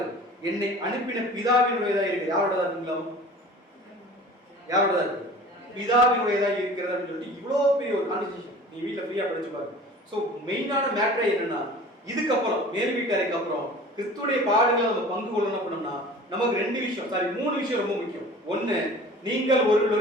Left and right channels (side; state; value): both; normal; correlation 0.42